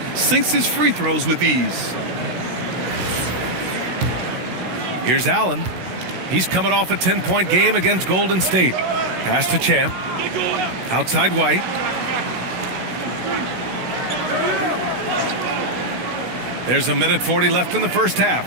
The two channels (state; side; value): late; left; 16 ms